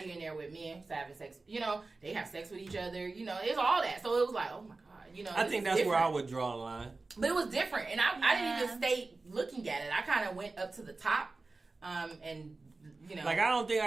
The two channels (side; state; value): left; quieter; 3.6 dB